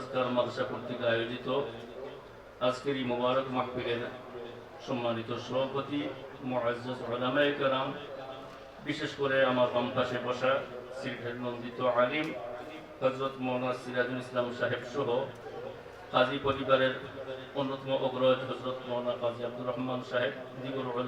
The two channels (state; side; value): identical; both; correlation 1.00